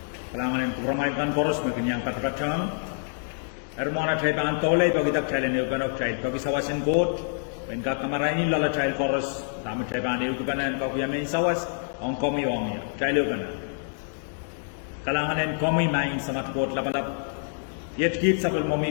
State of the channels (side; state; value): right; silent; digital silence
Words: kalangan yang kebramakan poros mungkin yang kata-kata ermona trai ban tolai bagi tak trai ne eukanok trai bagi sawasin court when ka kamaraini lala trai poros tamu trai ban eukanan ka kuya main sawas on komi ong ya trai eukanan kalangan yang komi main samat court lapalap yet kit sabel